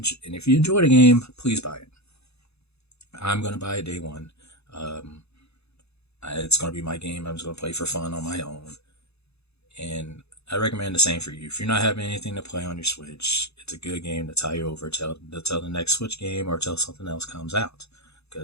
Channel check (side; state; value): right; late; 0.79 ms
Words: if you enjoy the game, please buy it. I'm going to buy it day one. Um, it's going to be my game. I'm just going to play for fun on my own. And I recommend the same for you. If you're not having anything to play on your Switch, it's a good game to tie you over till the next Switch game or till something else comes out.